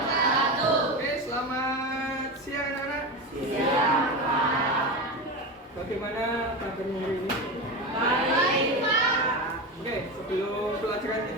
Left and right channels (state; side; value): normal; both; correlation 0.21